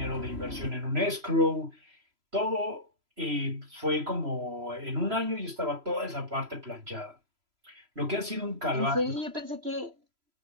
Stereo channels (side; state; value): left; late; 3.0 ms